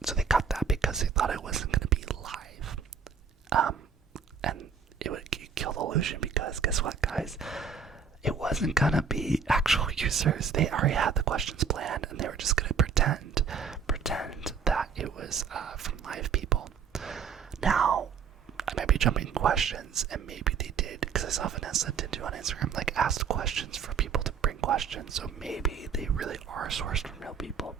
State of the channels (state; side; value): quieter; left; 6.1 dB